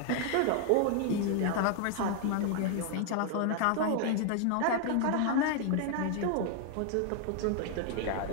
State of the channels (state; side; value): different; both; correlation 0.00